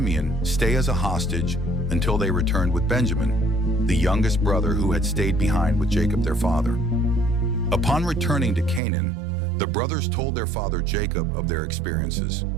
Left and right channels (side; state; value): left; drops out; at 8.8 s